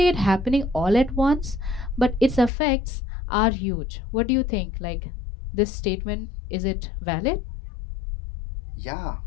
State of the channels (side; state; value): right; drops out; at 2.5 s